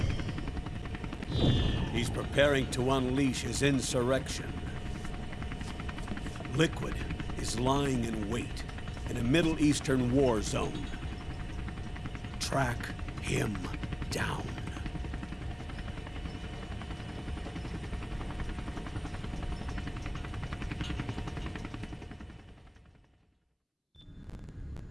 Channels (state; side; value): identical; both; correlation 1.00